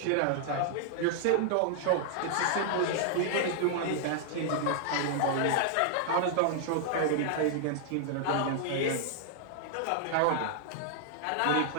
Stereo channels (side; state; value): both; different; correlation -0.01